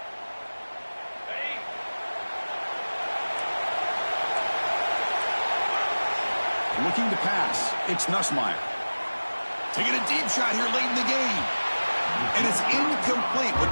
Looking to pass. It's Nussmeier. Taking a deep shot here late in the game. And it's incomplete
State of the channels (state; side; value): inverted; both; correlation -1.00